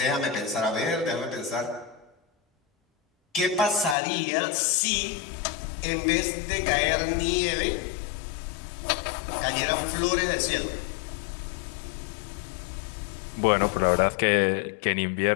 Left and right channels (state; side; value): drops out; right; at 4.0 s